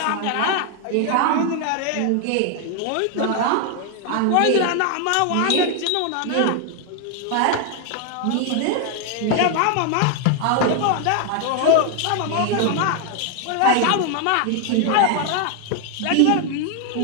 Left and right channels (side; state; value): both; different; correlation 0.00